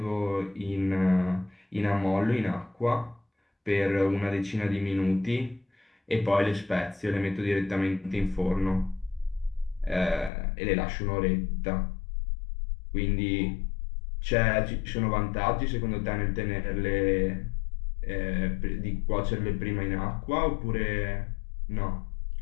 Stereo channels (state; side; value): drops out; right; at 10.3 s